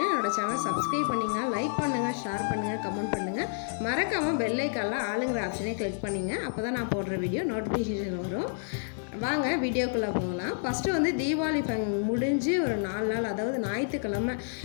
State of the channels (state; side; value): silent; right; digital silence